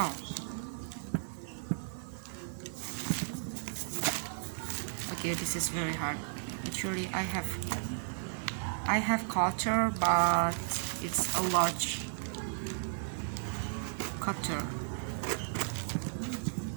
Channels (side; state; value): left; silent; digital silence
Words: Okay, this is very hard. Actually, I have cutter, but it's a large cutter.